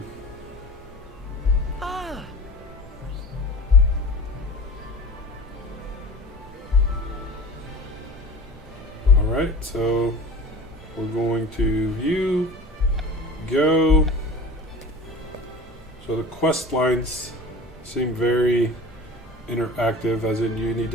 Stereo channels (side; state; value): both; normal; correlation 0.37